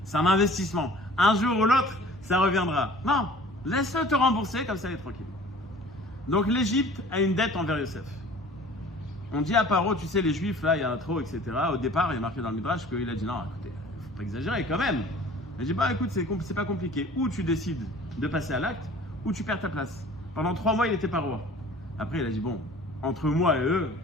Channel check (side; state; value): both; normal; correlation 0.48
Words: c'est un investissement. Un jour ou l'autre, ça reviendra. Non, laisse-le te rembourser, comme ça, il est tranquille. Donc, l'Égypte a une dette envers Yosef. On dit à Paro, tu sais, les Juifs, là, il y en a trop, etc. Au départ, il est marqué dans le Midrash qu'il a dit non, écoutez, il ne faut pas exagérer quand même. Il dit, écoute, c'est pas compliqué. Ou tu décides de passer à l'acte, ou tu perds ta place. Pendant 3 mois, il n'était pas roi. Après, il a dit, bon, entre moi et eux,